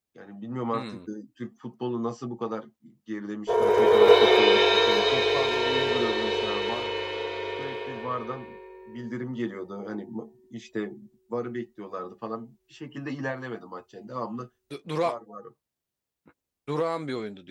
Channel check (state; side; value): identical; both; correlation 1.00